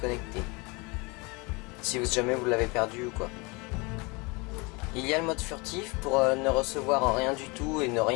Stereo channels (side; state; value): right; quieter; 27.4 dB